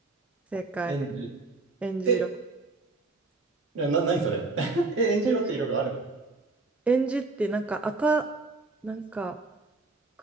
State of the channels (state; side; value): quieter; left; 3.6 dB